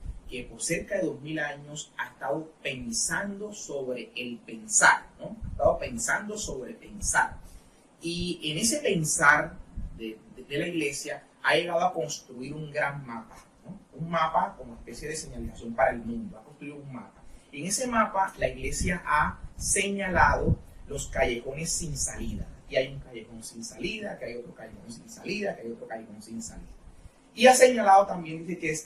que por cerca de 2000 años ha estado pensando sobre el pensar, ¿no? Ha estado pensando sobre pensar. Y en ese pensar de la Iglesia ha llegado a construir un gran mapa, ¿no? Un mapa como especie de señalización para el mundo, ha construido un mapa. En ese mapa la Iglesia ha señalado los callejones sin salida. Y hay un callejón sin salida, que hay otro callejón sin salida, que hay otro callejón sin salida. Y ha señalado también, dice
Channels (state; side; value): identical; both; correlation 1.00